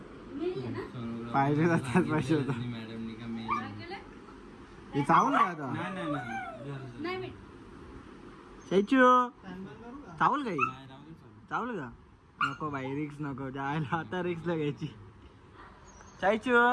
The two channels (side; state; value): both; identical; correlation 1.00